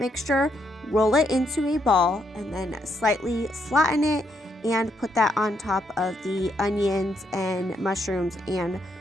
roll it into a ball, and then slightly flatten it and put that on top of the onions and mushrooms and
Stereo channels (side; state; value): both; normal; correlation 0.76